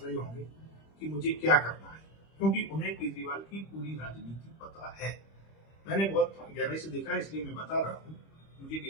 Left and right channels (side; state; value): right; late; 25 ms